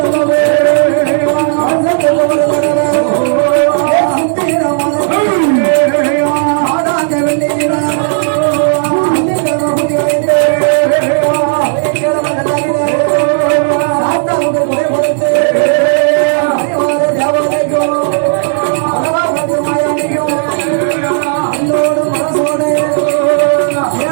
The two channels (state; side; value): silent; left; digital silence